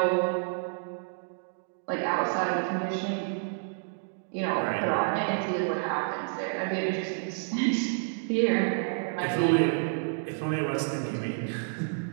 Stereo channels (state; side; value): silent; left; digital silence